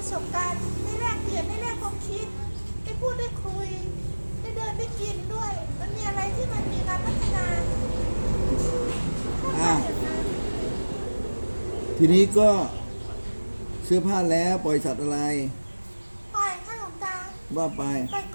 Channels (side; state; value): both; inverted; correlation -1.00